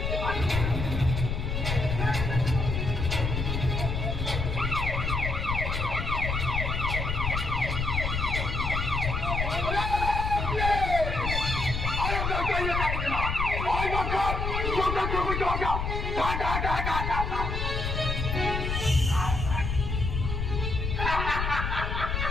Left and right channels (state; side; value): noise; left; rumble, 2 dB below the sound